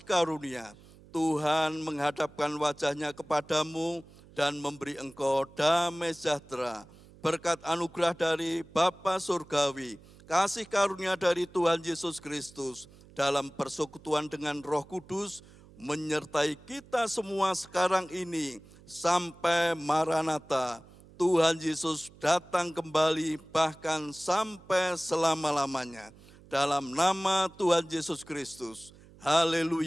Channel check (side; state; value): right; noise; hum, 23 dB below the sound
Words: karunia. Tuhan menghadapkan wajah-Nya kepadamu dan memberi engkau damai sejahtera. Berkat anugerah dari Bapa Surgawi, kasih karunia dari Tuhan Yesus Kristus, dalam persekutuan dengan Roh Kudus, menyertai kita semua sekarang ini sampai Maranatha. Tuhan Yesus datang kembali bahkan sampai selama-lamanya. Dalam nama Tuhan Yesus Kristus.